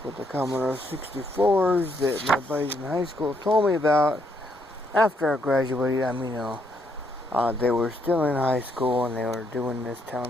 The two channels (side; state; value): both; normal; correlation 0.73